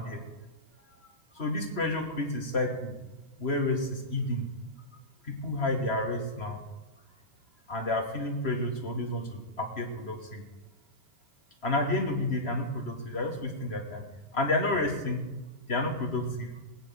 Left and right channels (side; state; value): right; late; 3.0 ms